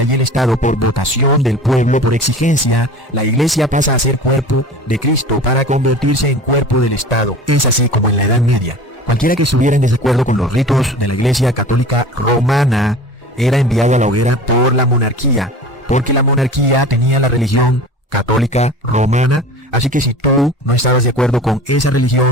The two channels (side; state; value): both; normal; correlation 0.39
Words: y el Estado por votación del pueblo, por exigencia, la iglesia pasa a ser cuerpo de Cristo para convertirse en cuerpo del Estado. Es así como en la Edad Media. Cualquiera que estuviera en desacuerdo con los ritos de la Iglesia Católica Romana era enviado a la hoguera por la monarquía, porque la monarquía tenía la religión católica romana. Así que si tú no estabas de acuerdo con esa